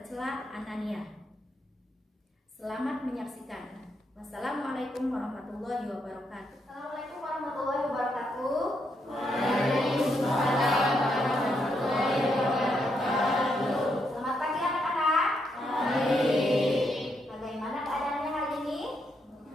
anania. Selamat menyaksikan. Wassalamualaikum warahmatullahi wabarakatuh. Assalamualaikum warahmatullahi wabarakatuh. Waalaikumsalam warahmatullahi wabarakatuh. Selamat pagi anak-anak. Bagaimana keadaannya hari ini?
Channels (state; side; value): normal; both; correlation 0.78